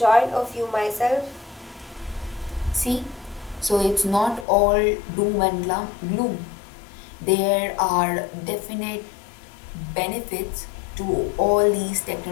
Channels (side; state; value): right; drops out; at 4.5 s